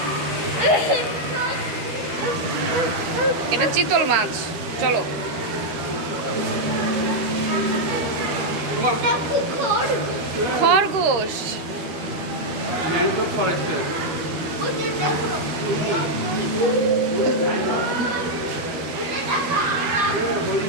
এটা চিতল মাছ। চলো খরগোশ। Mango forest.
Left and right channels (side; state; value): left; late; 13 ms